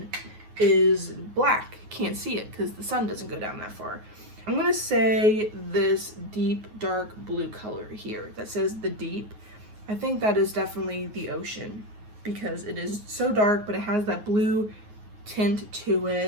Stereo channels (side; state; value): left; late; 9.5 ms